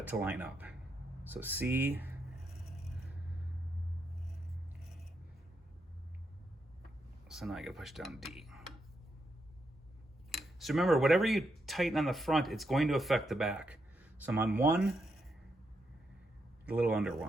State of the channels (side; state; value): both; normal; correlation 0.81